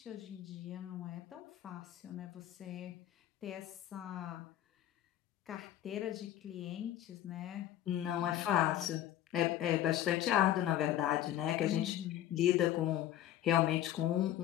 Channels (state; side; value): quieter; right; 12.3 dB